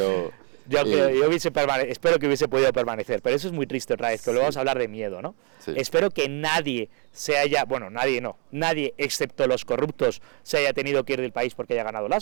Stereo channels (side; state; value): left; quieter; 35.7 dB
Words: yo espero que hubiese podido permanecer, pero eso es muy triste otra vez, que luego vamos a hablar de miedo, ¿no? Sí. Espero que nadie nadie excepto los corruptos se haya tenido que ir del país porque haya ganado